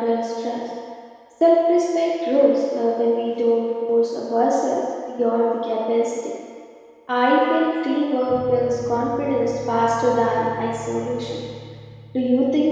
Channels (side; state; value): both; identical; correlation 1.00